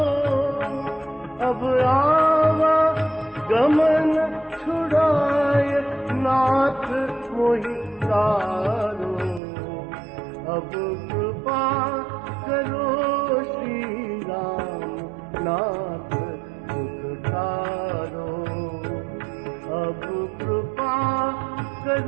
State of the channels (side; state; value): left; drops out; at 9.4 s